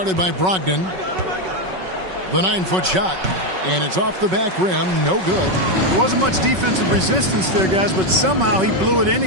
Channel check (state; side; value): late; left; 5.4 ms